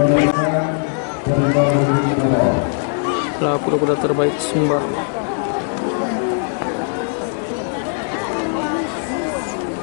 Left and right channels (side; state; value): right; silent; 58 dB below the other